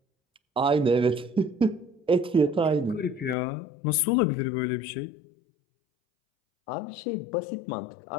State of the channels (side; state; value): right; drops out; at 3.4 s